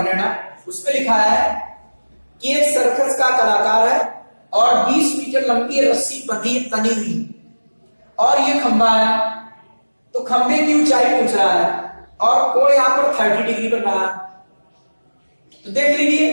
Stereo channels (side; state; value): both; inverted; correlation -1.00